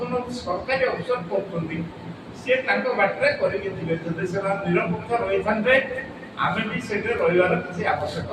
ସରକାରୀ ଅଫିସର କରୁଛନ୍ତି, ସିଏ ତାଙ୍କ ବାଟରେ କରିକି ଯିବେ। ଯଦି ସେମାନେ ନିରପେକ୍ଷ ରହିଥାନ୍ତେ, ଆମେ ବି ସେଠି ରହିବାର କିଛି ଆବଶ୍ୟକ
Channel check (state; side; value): identical; both; correlation 1.00